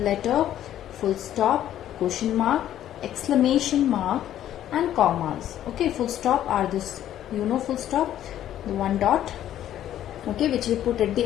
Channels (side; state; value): right; quieter; 11.7 dB